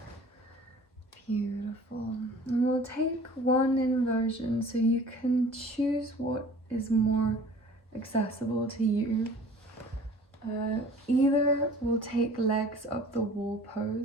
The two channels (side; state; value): both; normal; correlation 0.47